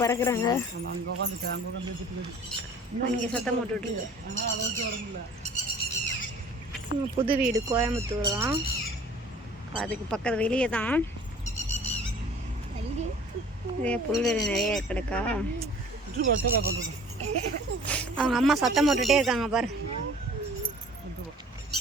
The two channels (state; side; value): normal; both; correlation 0.49